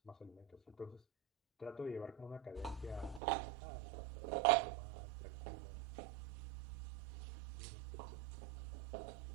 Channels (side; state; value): left; drops out; at 3.2 s